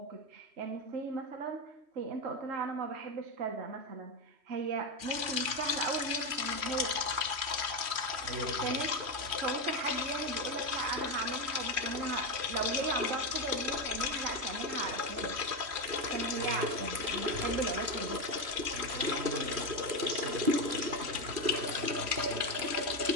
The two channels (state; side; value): late; left; 3.1 ms